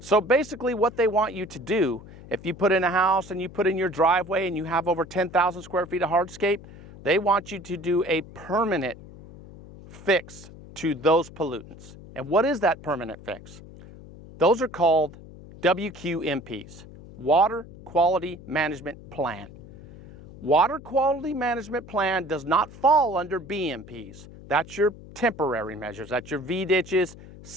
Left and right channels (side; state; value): left; noise; hum, 18 dB below the sound